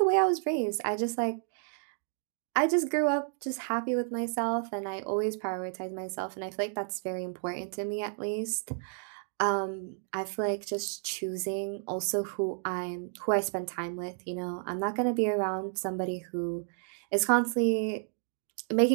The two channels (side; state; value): left; silent; 57 dB below the other